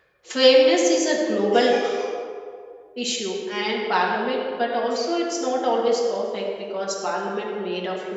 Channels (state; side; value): identical; both; correlation 1.00